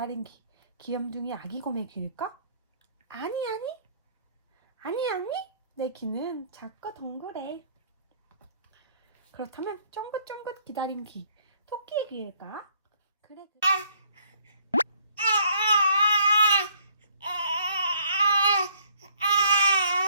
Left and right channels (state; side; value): inverted; both; correlation -0.63